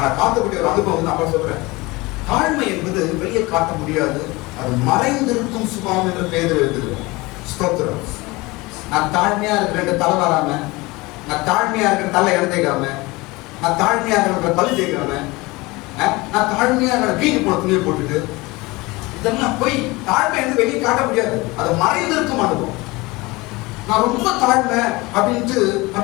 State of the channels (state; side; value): quieter; right; 22.8 dB